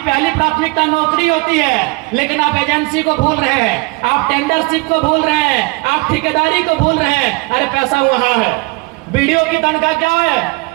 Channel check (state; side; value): quieter; left; 26.5 dB